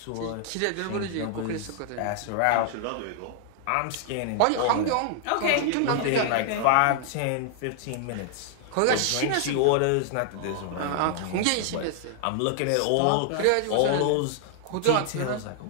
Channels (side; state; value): both; different; correlation 0.00